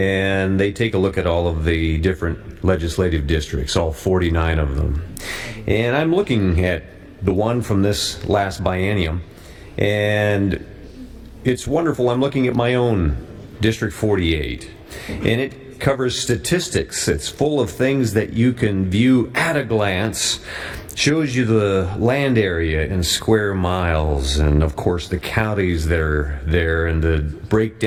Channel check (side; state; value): both; identical; correlation 1.00